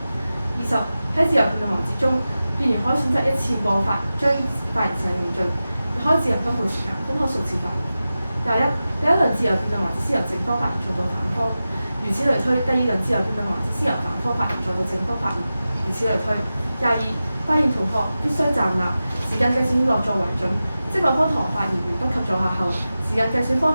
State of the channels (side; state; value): both; inverted; correlation -0.94